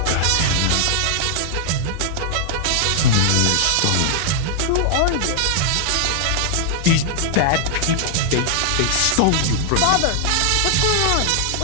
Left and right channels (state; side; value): different; both; correlation -0.01